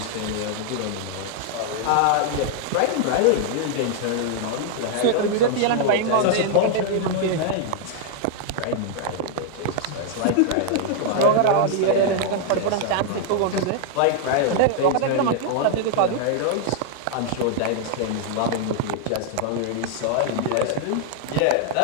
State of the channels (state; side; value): different; both; correlation -0.01